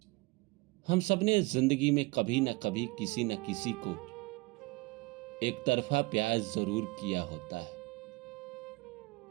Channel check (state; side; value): quieter; left; 24.5 dB